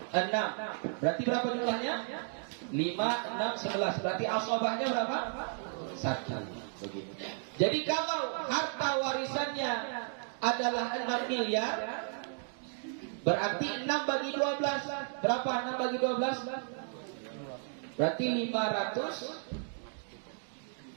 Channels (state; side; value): silent; left; 55 dB below the other